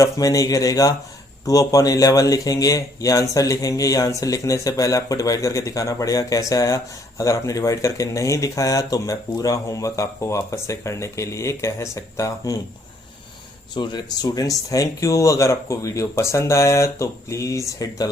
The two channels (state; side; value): normal; both; correlation 0.66